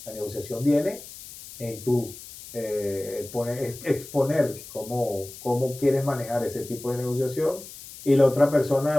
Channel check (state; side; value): noise; left; hiss, 15 dB below the sound